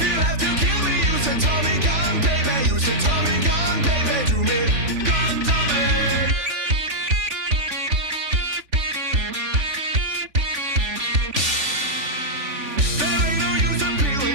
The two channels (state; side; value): late; left; 3.4 ms